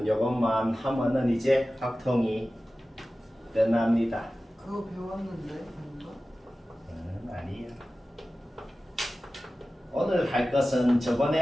이것만 하면은 이제 확통이 끝납니다. 그거 배웠는데 뭔가? 아니에요. 오늘 할 것은 저번에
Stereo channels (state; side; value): normal; both; correlation 0.95